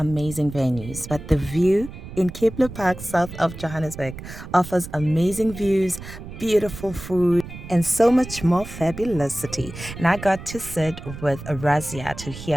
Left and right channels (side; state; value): right; noise; rumble, 12 dB below the sound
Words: venues, but the view in Kepler Park, south of Johannesburg, offers amazing views, beautiful food, and so much more fabulosity. And I got to sit with Razia to